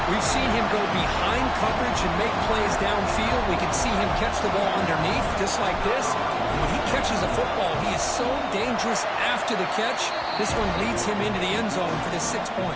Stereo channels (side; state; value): both; identical; correlation 1.00